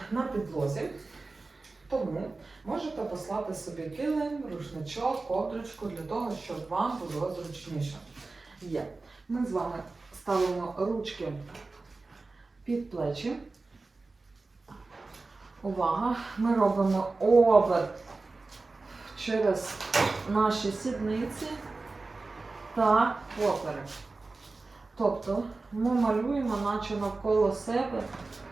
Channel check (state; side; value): quieter; left; 3.6 dB